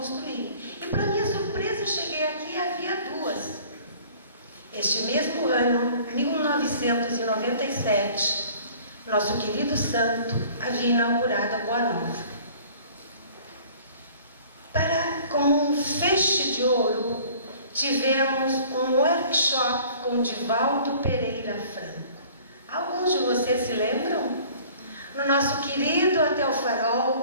E para minha surpresa, cheguei aqui e havia 2. Este mesmo ano, 1997, nosso querido santo havia inaugurado a Boa Nova. Como um feixe de ouro, tivemos um workshop com Divaldo Pereira Franco. Alguns de vocês se lembram? No nosso querido Hotel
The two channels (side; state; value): both; inverted; correlation -0.50